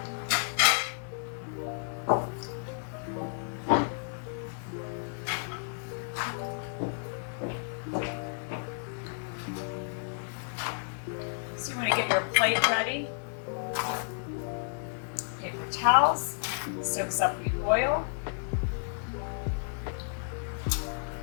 So you want to get your plate ready. Paper towels, soaks up the oil.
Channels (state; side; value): silent; right; 57 dB below the other